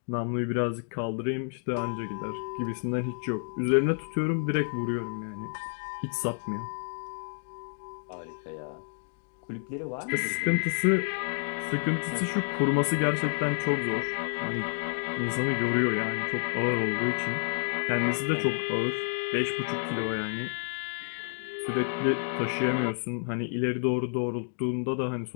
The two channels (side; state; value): right; silent; digital silence